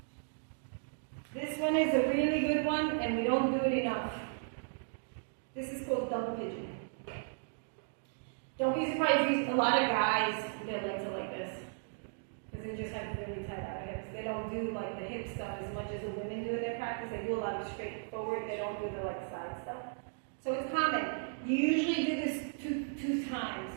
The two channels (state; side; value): silent; left; digital silence